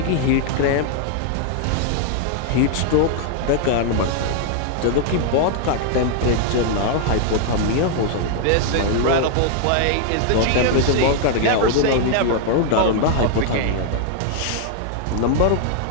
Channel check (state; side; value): different; both; correlation 0.00